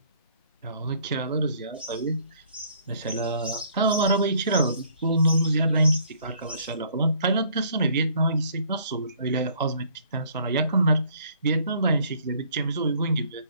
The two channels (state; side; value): inverted; both; correlation -0.60